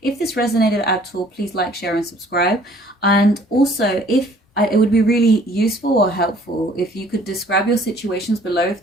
this resonated at all, please like, share, and subscribe. And also, it would be really useful or helpful if you could describe your situations below if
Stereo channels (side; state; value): both; normal; correlation 0.56